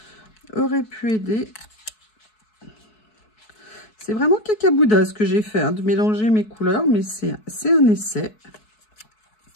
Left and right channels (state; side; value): late; right; 4.6 ms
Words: aurait pu aider. C'est vraiment cacabouda ce que j'ai fait, hein, de mélanger mes couleurs, mais c'est un essai.